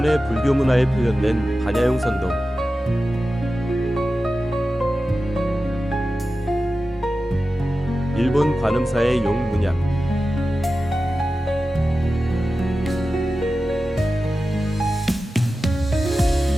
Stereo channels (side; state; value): both; normal; correlation 0.93